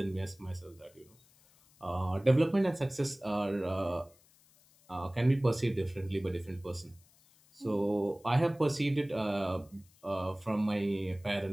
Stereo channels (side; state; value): left; noise; hiss, 30 dB below the sound